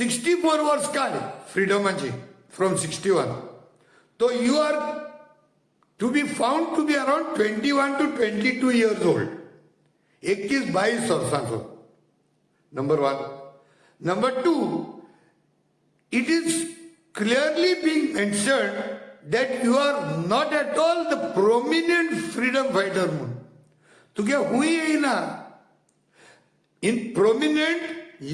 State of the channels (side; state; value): both; identical; correlation 1.00